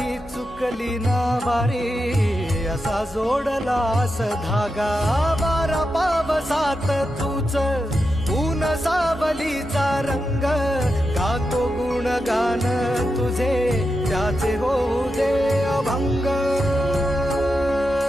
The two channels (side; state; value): both; normal; correlation 0.88